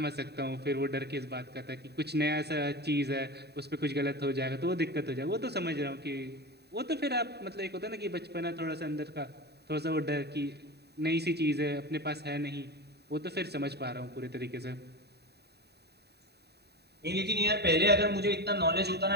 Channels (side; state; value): left; late; 0.48 ms